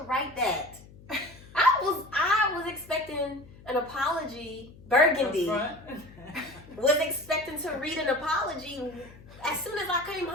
write that? I was expecting an apology. Burgundy was expecting to read an apology as soon as I came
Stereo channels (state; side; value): noise; left; hum, 21 dB below the sound